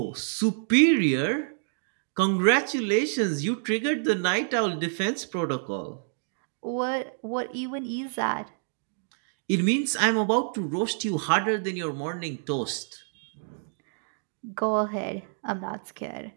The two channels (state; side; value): silent; left; digital silence